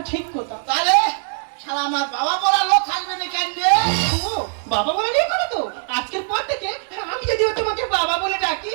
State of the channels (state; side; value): silent; left; digital silence